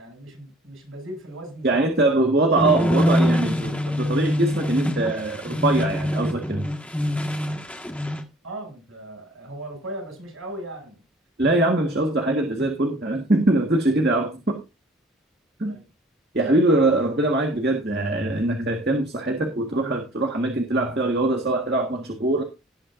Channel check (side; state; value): both; normal; correlation 0.53